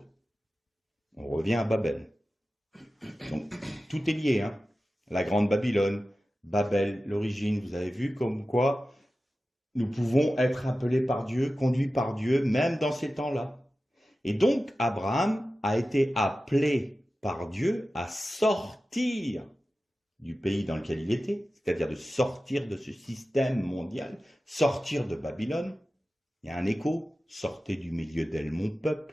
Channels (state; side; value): normal; both; correlation 0.94